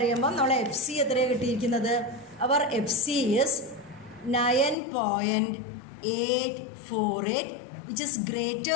നമ്മളെ FC എത്രയാണ് കിട്ടിയിരിക്കുന്നത്? അവർ FC is 9.848, which is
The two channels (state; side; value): drops out; right; at 4.8 s